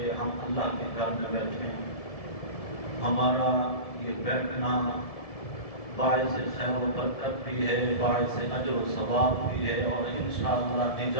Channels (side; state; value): right; late; 1.7 ms